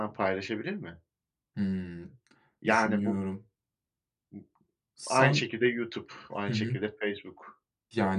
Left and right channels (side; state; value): both; identical; correlation 1.00